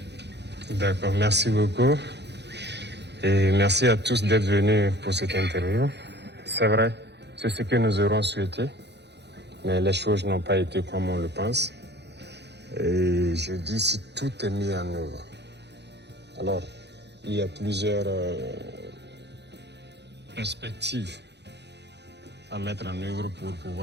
D'accord, merci beaucoup. Et merci à tous d'être venus pour cette interview. C'est vrai, c'est ce que nous aurons souhaité, mais les choses n'ont pas été comme on le pense. Et je dis si tout est mis en œuvre. Alors, il y a plusieurs perspectives à mettre en œuvre pour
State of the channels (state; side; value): late; left; 0.50 ms